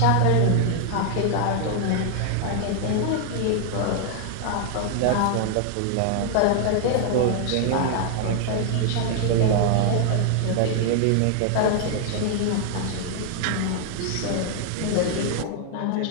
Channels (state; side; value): different; both; correlation 0.00